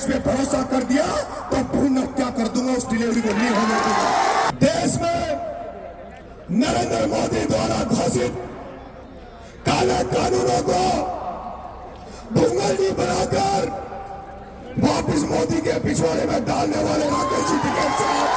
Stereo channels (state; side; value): identical; both; correlation 1.00